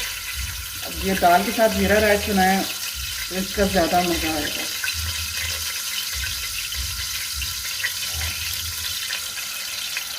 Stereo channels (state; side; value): identical; both; correlation 1.00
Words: ये दाल के साथ ज़ीरा राइस बनाएं तो इसका ज़्यादा मज़ा आएगा।